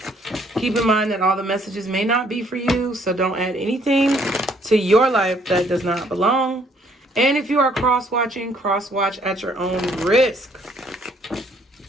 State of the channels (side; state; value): both; normal; correlation 0.65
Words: Keep in mind that all the messages may not be for you, so don't add anything to your life that does not belong. And if you are cross-watching, cross-watch at your own risk.